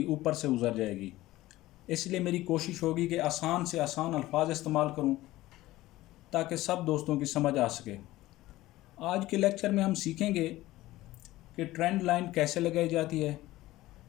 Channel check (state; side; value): quieter; right; 17.0 dB